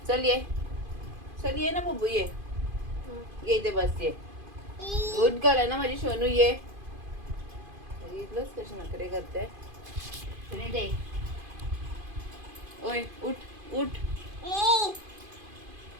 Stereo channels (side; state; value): left; late; 2.5 ms